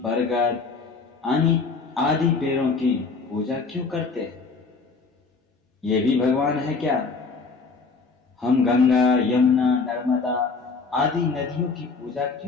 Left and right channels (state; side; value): quieter; right; 4.5 dB